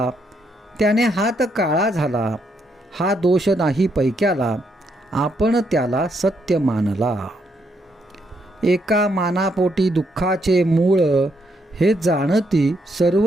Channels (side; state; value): both; normal; correlation 0.76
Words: त्याने हात काळा झाला. हा दोष नाही पैक्याला, आपण त्याला सत्य मानला. एका मानापोटी दुःखाचे मूळ, हे जाणती